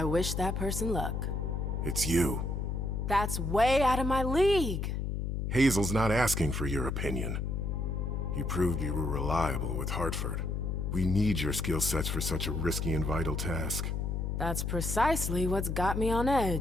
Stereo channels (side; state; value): left; noise; hum, 1 dB below the sound